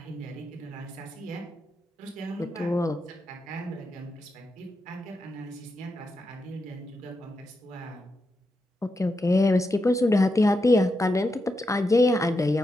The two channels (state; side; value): normal; both; correlation 0.86